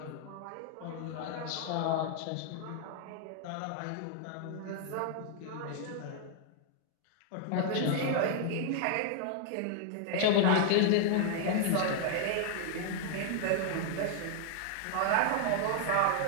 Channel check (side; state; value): both; different; correlation 0.00